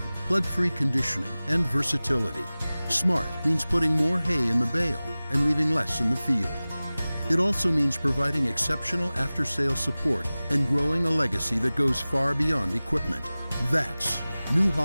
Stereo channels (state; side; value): inverted; both; correlation -0.98